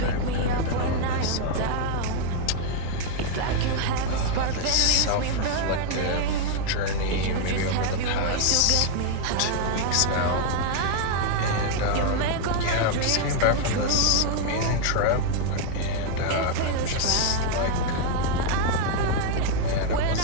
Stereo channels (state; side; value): different; both; correlation 0.00